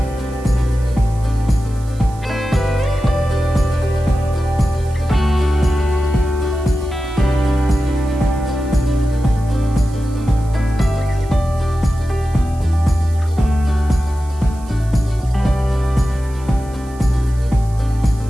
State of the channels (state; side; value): noise; right; hiss, 24 dB below the sound